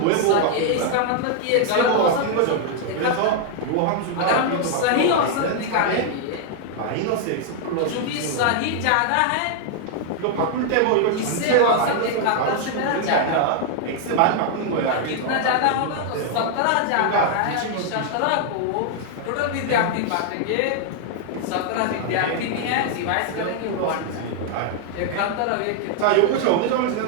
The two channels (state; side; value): different; both; correlation 0.00